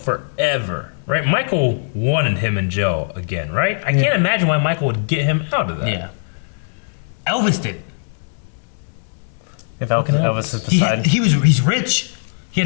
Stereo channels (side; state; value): right; silent; 62 dB below the other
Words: right? Michael wanted him in jail again, right? I can't imagine why Michael would get him out of that. yeah. Elvis did. If Elvis is beside. He's rich. He